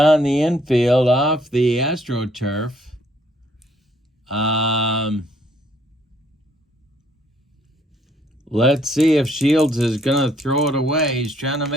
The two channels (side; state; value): both; normal; correlation 0.66